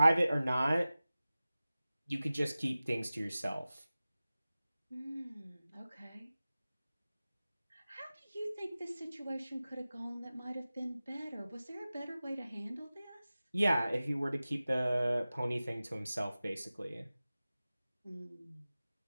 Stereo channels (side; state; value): both; inverted; correlation -0.96